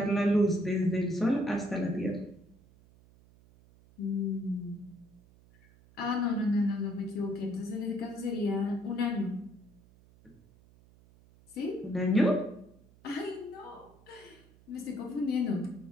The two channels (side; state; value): right; noise; hum, 26 dB below the sound